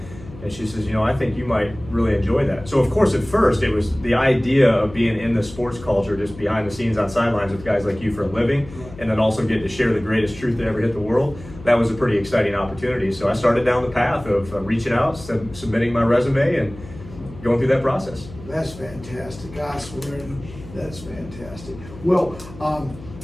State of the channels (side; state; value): left; noise; hum, 17 dB below the sound